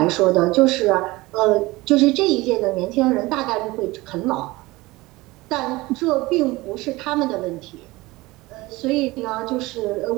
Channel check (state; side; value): quieter; left; 20.8 dB